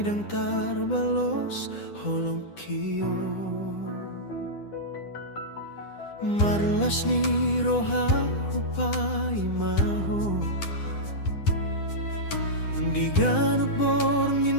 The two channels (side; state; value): right; late; 10 ms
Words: dang tarbalos holong kiyo marlas ni roha upay maho di ganok